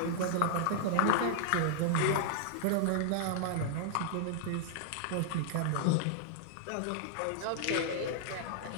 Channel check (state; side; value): different; both; correlation -0.01